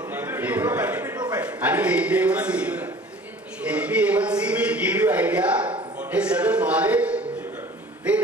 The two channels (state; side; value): normal; both; correlation 0.46